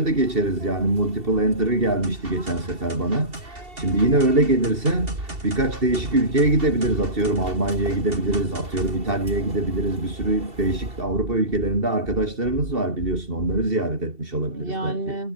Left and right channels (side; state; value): left; late; 2.7 ms